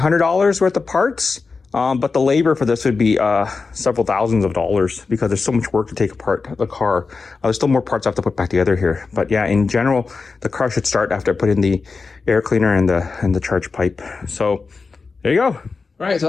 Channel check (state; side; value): quieter; right; 4.5 dB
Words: worth of parts. But the labor for this would be several thousands of dollars because there's so much work to take apart the car. There's still more parts I have to put back together here. But yeah, in general, the car should start after I put in the air cleaner and the charge pipe. So there you go. All right, so